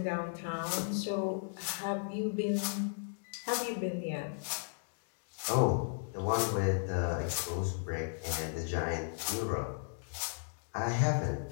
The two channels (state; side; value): silent; right; digital silence